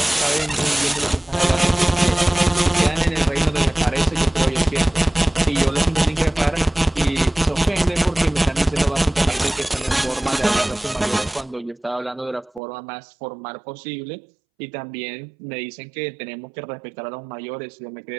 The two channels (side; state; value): left; drops out; at 12.6 s